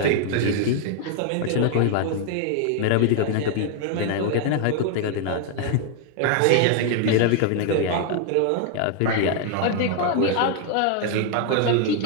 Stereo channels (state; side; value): different; both; correlation 0.00